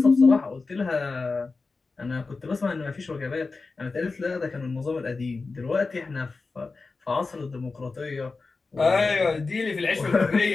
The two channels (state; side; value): quieter; right; 4.0 dB